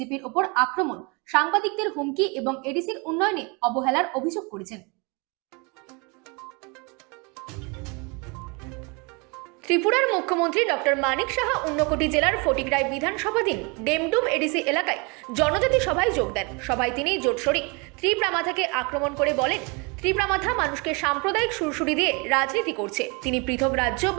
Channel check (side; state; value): left; quieter; 30.2 dB